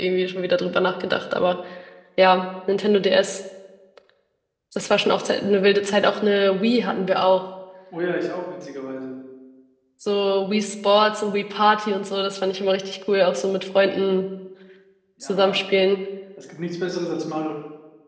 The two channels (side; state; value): both; identical; correlation 1.00